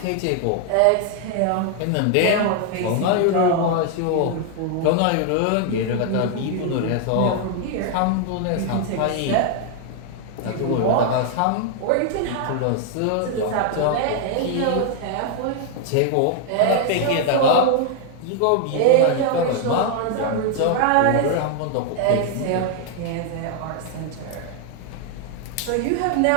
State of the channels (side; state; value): both; different; correlation 0.00